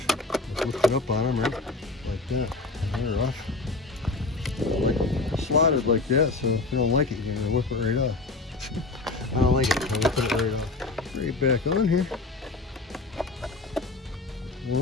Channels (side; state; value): right; quieter; 3.5 dB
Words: just lift it up on them, right? Like that. And they're off. Like slotted like that, so if you don't like it, you're gonna whip it right off. I don't like it, I'll whip it right off. Right back on here.